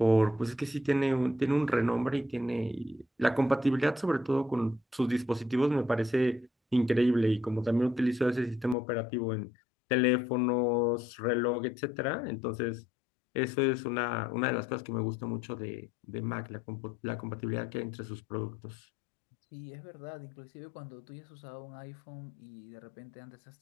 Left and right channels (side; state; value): right; drops out; at 8.8 s